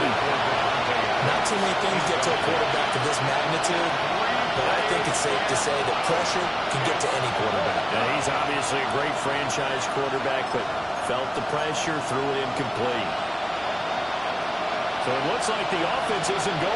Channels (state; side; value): identical; both; correlation 1.00